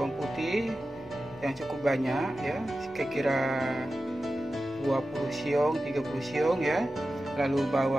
putih yang cukup banyak ya, kira-kira 20 siung, 30 siung ya. Lalu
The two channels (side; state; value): both; normal; correlation 0.93